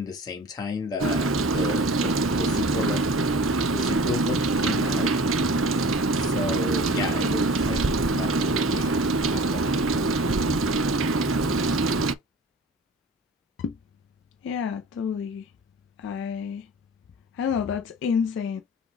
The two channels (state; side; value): normal; both; correlation 0.41